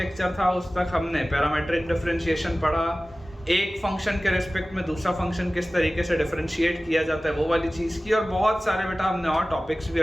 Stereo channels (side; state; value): both; normal; correlation 0.97